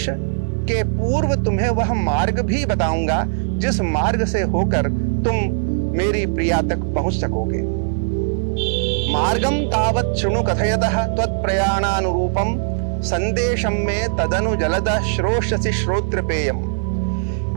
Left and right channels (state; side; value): silent; left; digital silence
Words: के पूर्व तुम्हें वह मार्ग भी बताऊंगा जिस मार्ग से होकर तुम मेरी प्रिया तक पहुंच सकोगे। मार्गम तावत् शृणु कथयतः त्वत्प्रयाणानुरूपम संदेशम में तदनु जलदः श्रोष्यसि श्रोत्रपेयम।